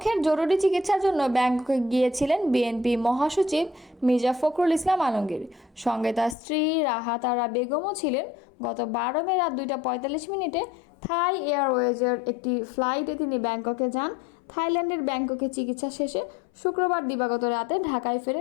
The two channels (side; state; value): right; drops out; at 6.4 s